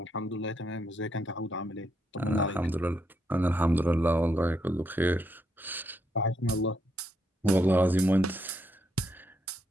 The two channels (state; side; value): normal; both; correlation 0.77